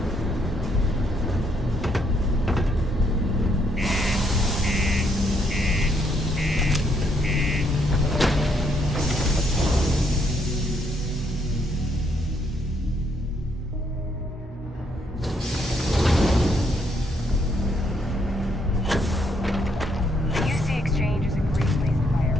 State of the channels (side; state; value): both; normal; correlation 0.72